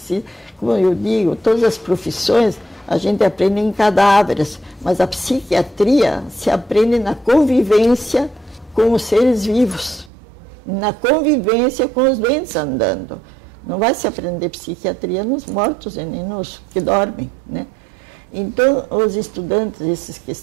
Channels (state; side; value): drops out; left; at 10.1 s